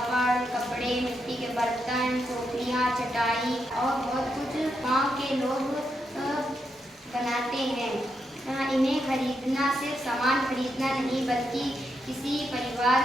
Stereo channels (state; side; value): normal; both; correlation 0.82